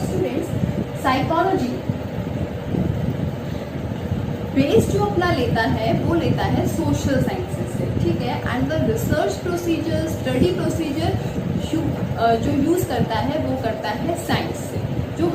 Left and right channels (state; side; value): identical; both; correlation 1.00